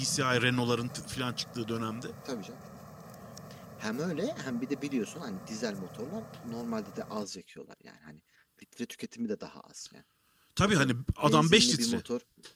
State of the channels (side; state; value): both; identical; correlation 1.00